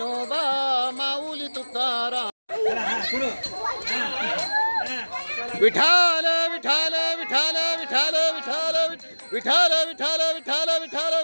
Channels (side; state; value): both; inverted; correlation -1.00